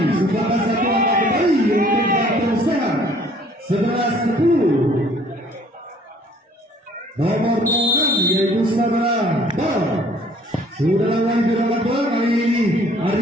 sumbangkan satu angka kembali untuk Baron sehat 11-10 nomor 6 yaitu saudara Baron sudah lawan di dalam bola kali ini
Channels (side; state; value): both; normal; correlation 0.57